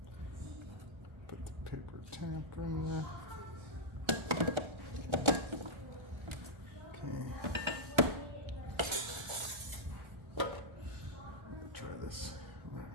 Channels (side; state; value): left; late; 1.3 ms